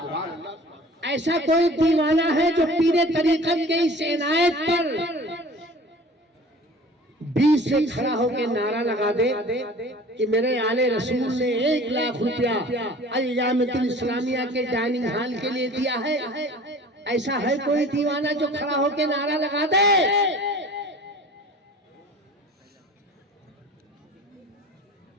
अल्लाह। ऐसा कोई दीवाना है जो पीरे तरीकत के इस इनायत पर 20 से खड़ा होकर नारा लगा दे कि मेरे आले रसूल ने 1 लाख रुपया अल-जामिअतुल इस्लामिया के डाइनिंग हॉल के लिए दिया है। ऐसा है कोई दीवाना जो खड़ा होकर नारा लगा दे?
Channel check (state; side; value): normal; both; correlation 0.44